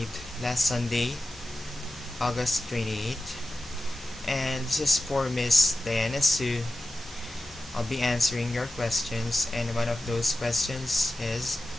last Sunday, August 28th, and this is for Miss Diana Sue. I'll be answering your questions, and one of those questions is,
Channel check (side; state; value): both; normal; correlation 0.92